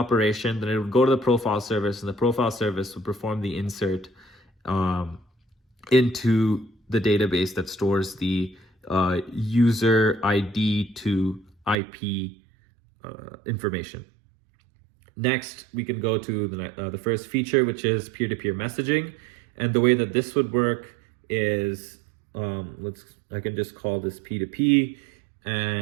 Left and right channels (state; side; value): drops out; left; at 11.8 s